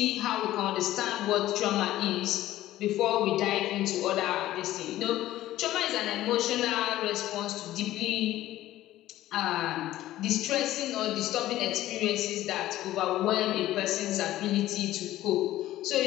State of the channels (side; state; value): right; quieter; 14.6 dB